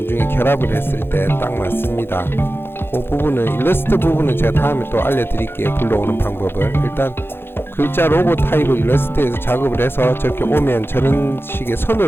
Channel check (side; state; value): right; late; 0.11 ms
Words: 결합을 했을 때 딱 맞습니다. 그 부분은 일러스트 부분은 제가 다음에 또 알려드릴게요. 불러오는 방법을. 일단 글자 로고 타입을 일러스트에서 작업을 해서 저렇게 오면 저런 식의